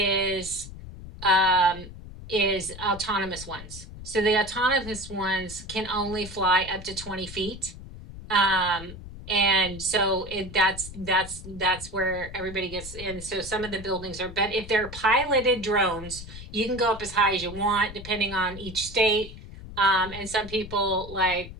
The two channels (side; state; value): left; noise; rumble, 13 dB below the sound